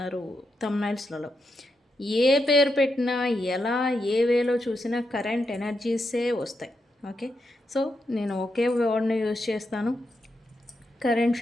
థంబ్నైల్స్లలో. ఏ పేరు పెట్టినా, ఎలా ఏ వేలో చూసినా కరెంట్ ఎనర్జీసే వస్తాయి. ఓకే, సో నేను ఒకే వర్డ్ని యూజ్ చేస్తాను, కరెంట్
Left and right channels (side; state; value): both; normal; correlation 0.84